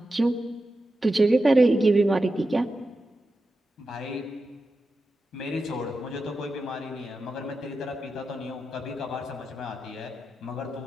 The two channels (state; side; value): normal; both; correlation 0.90